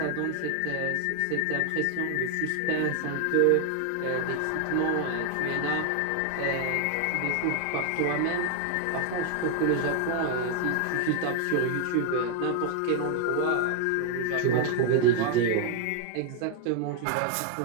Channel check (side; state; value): both; different; correlation 0.00